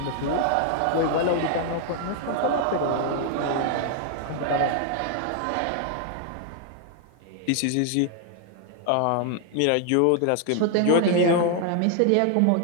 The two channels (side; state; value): both; different; correlation 0.00